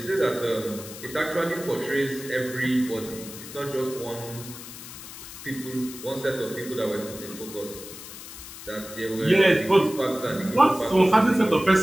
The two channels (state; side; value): noise; left; hiss, 13 dB below the sound